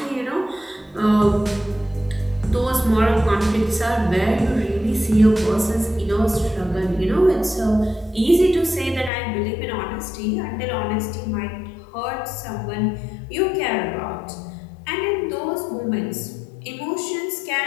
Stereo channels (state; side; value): drops out; right; at 9.1 s